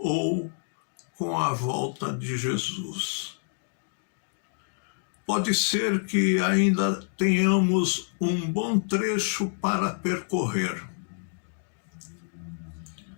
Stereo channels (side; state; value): right; silent; digital silence